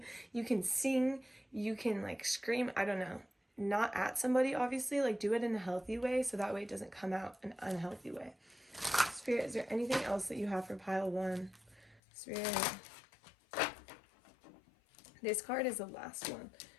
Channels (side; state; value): right; drops out; at 12.0 s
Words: you can sing, you can like scream, I don't know, not at somebody, obviously, like do it in a healthy way so that way it doesn't come out an unhealthy way. Spirit, is there anything else that you have for pile 1? Spirit. This card is the last one.